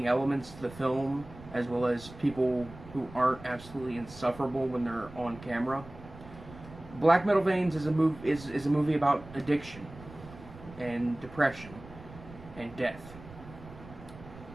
elements to the film, as well as people who aren't absolutely insufferable when they're on camera. Black Metal Veins is a movie about addiction and depression and death.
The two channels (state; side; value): noise; right; rumble, 17 dB below the sound